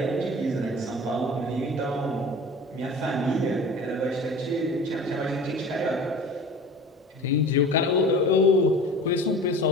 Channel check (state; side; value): normal; both; correlation 0.39